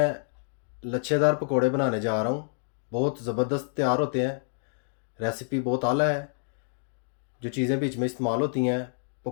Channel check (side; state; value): right; silent; digital silence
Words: लच्छेदार पकोड़े बनाने जा रहा हूँ। बहुत ज़बरदस्त तैयार होते हैं। रेसिपी बहुत आला है। जो चीज़ें बीच में इस्तेमाल होती हैं